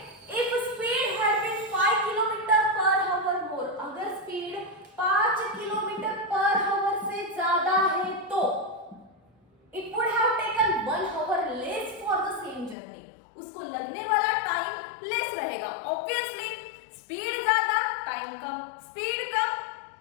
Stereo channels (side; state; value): right; drops out; at 12.8 s